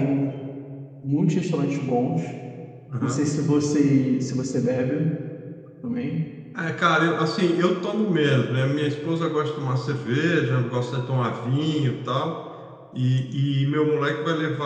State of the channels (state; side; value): identical; both; correlation 1.00